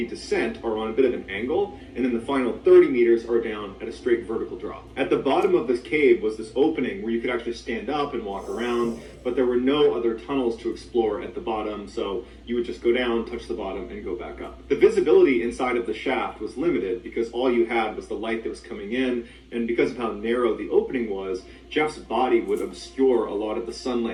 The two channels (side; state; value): both; identical; correlation 1.00